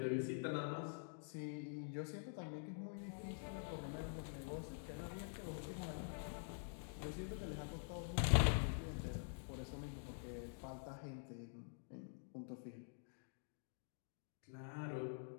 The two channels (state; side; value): silent; right; digital silence